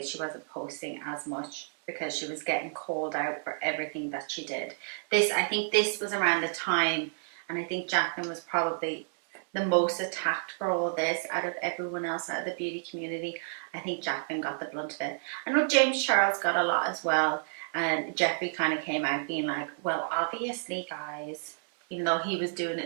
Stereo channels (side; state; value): left; silent; digital silence